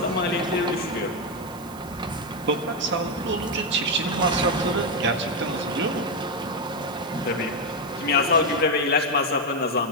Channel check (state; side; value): noise; right; hiss, 21 dB below the sound